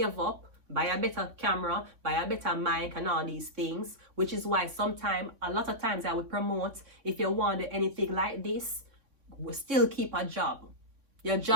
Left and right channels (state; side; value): late; left; 3.6 ms